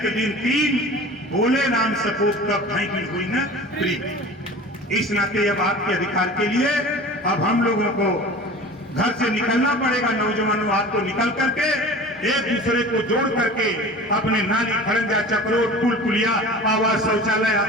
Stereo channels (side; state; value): both; normal; correlation 0.39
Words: दिन 3, बोले राम सपूत तब भाई हुई न प्रीत। इस नाते अब आपके अधिकार के लिए अब हम लोगों को घर से निकलना पड़ेगा। नौजवानों आपको निकल करके एक दूसरे को जोड़ करके अपने नाली, खड़ंजा, चक्रोट, पुल पुलिया, आवास, शौचालय,